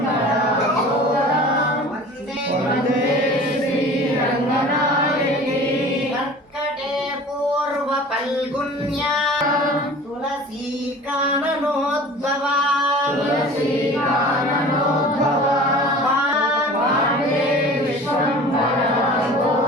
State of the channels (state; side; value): normal; both; correlation 0.42